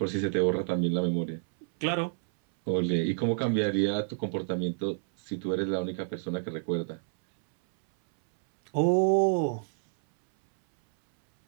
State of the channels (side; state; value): left; silent; 59 dB below the other